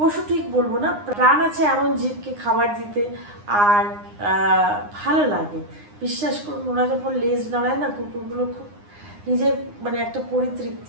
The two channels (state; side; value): late; left; 9.8 ms